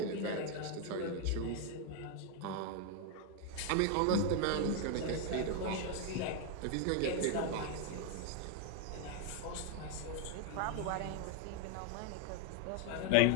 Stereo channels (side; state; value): both; different; correlation 0.01